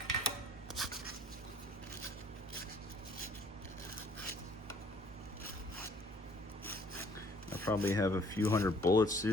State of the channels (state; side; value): normal; both; correlation 0.59